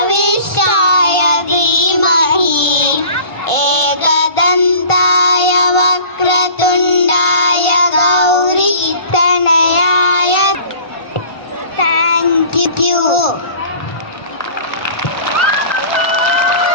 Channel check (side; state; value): right; late; 1.5 ms